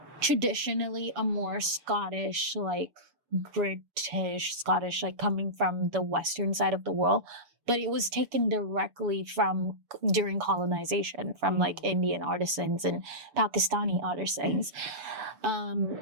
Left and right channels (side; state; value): left; late; 6.9 ms